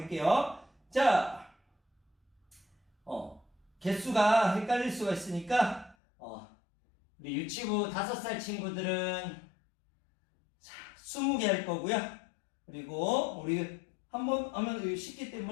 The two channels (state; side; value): drops out; right; at 6.0 s